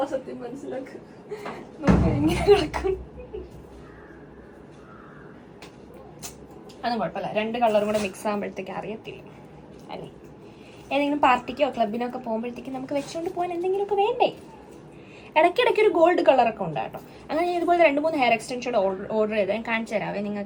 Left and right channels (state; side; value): identical; both; correlation 1.00